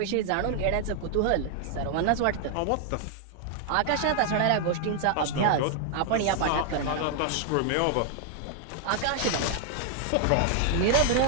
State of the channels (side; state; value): both; different; correlation 0.00